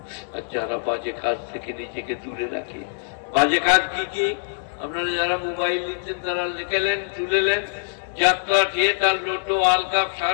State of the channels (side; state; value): right; silent; 63 dB below the other